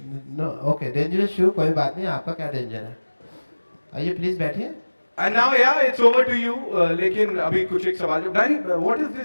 नो ओके, डेंजरस शू, कोई बात नहीं, आपका क्या डेंजर है? आइए प्लीज बैठिए। And now yeah, it's over to you. लेकिन अभी कुछ एक सवाल जो Danny, what is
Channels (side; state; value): both; inverted; correlation -1.00